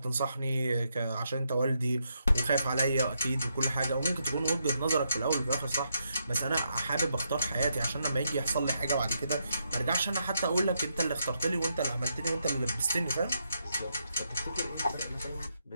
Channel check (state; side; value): inverted; both; correlation -0.80